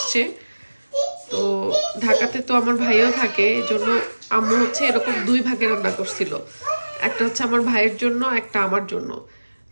তো ঢাকাতে তো আমার ভাইও থাকে, এই জন্য আম্মু হচ্ছে এরকম দুই ভাগে রান্না করছিল, একটা হচ্ছে আমার ভাইয়ের জন্য, একটা আমার জন্য।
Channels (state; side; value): inverted; both; correlation -1.00